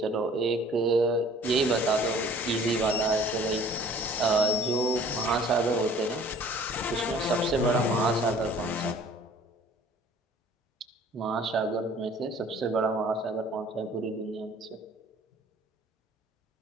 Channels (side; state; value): both; normal; correlation 0.52